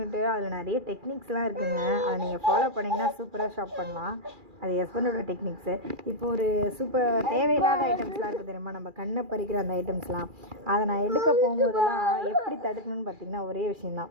அதில் நிறைய டெக்னிக்ஸ்லாம் இருக்குதுங்க. அதை நீங்கள் ஃபாலோ பண்ணிங்கன்னா சூப்பராக ஷாப் பண்ணலாம். அது ஹஸ்பண்டோட டெக்னிக்ஸு. இப்போ ஒரு தேவையில்லாத ஐட்டம்ஸ்லாம் இருக்குது தெரியுமா, நம்ம கண்ணை பறிக்கிற அந்த ஐட்டம்ஸ்லாம். அதை நான் எடுக்க போகும்போதெல்லாம் எப்படி தடுக்கணும்னு பார்த்திங்கன்னா ஒரே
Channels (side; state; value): left; late; 2.4 ms